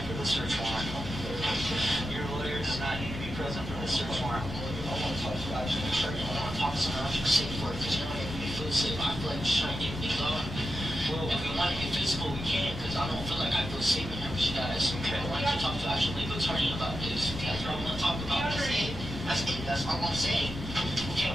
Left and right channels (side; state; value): both; normal; correlation 0.89